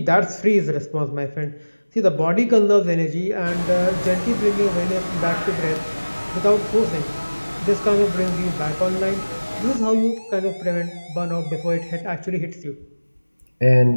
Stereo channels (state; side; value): inverted; both; correlation -1.00